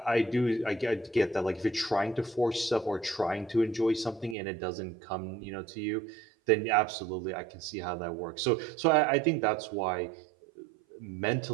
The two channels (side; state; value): left; drops out; at 4.4 s